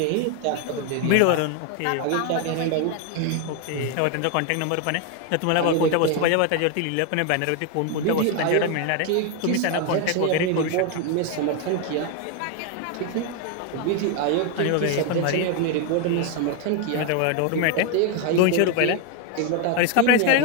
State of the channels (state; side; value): different; both; correlation 0.01